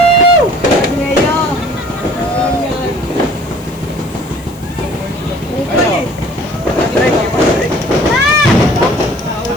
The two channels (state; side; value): noise; left; hiss, 24 dB below the sound